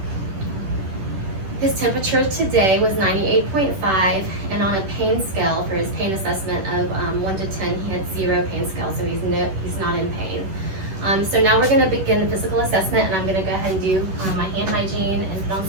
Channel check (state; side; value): late; left; 10 ms